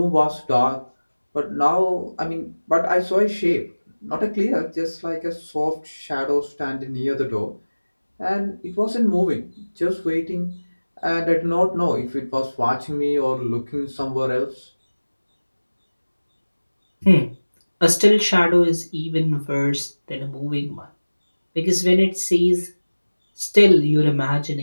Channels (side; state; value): both; inverted; correlation -1.00